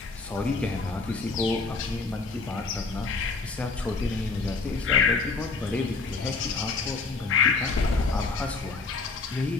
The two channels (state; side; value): quieter; right; 4.2 dB